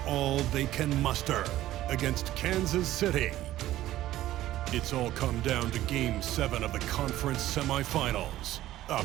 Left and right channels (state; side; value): quieter; left; 14.5 dB